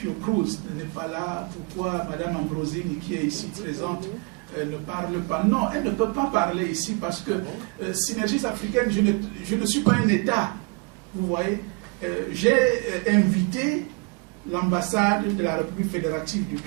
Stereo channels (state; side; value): quieter; left; 30.2 dB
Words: n'est pas là? Pourquoi Mme Ambrosini, qui est ici présente, ne parle pas? Non, elle ne peut pas parler ici parce que Synergies africaines, je ne suis pas un État. Vous voyez, j'ai invité l'ambassade de la République fédérative du